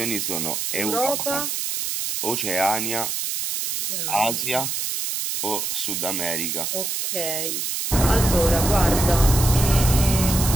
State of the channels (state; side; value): noise; right; hiss, 2 dB below the sound